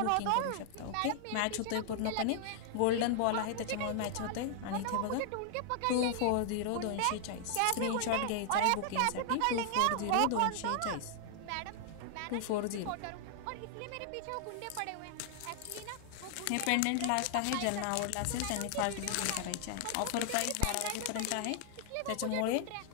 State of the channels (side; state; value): both; different; correlation 0.00